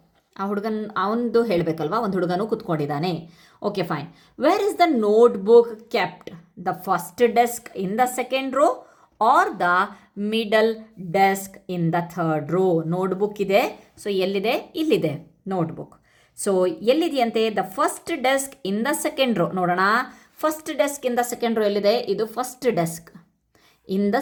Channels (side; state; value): both; identical; correlation 1.00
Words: ಆ ಹುಡುಗನ ಅವನದು ಹೇಳಬೇಕಲ್ವಾ, ಒಂದು ಹುಡುಗನೂ ಕೂತ್ಕೊಂಡಿದ್ದಾನೆ. Okay, fine. Where is the notebook kept? The first desk in the second row or the middle desk in the 3rd row. Notebook ಇದೆ. So ಎಲ್ಲಿದೆ? ಇಲ್ಲಿದೆ ನೋಟ್ಬುಕ್. ಸೊ ಎಲ್ಲಿದೆಯಂತೆ? The first desk in the second row. ನೋಡೋಣ, first desk in the second row ಎಲ್ಲಿದೆ? ಇದು first desk in the